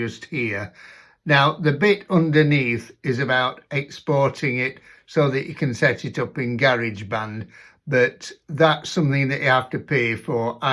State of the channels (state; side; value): identical; both; correlation 1.00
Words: here. Now the bit underneath is about exporting it so that you can set it up in GarageBand, but that's something that you have to pay for,